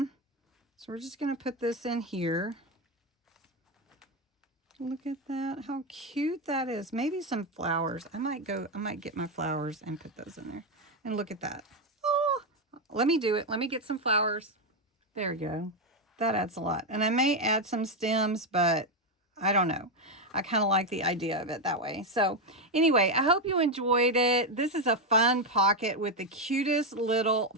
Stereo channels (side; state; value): both; normal; correlation 0.07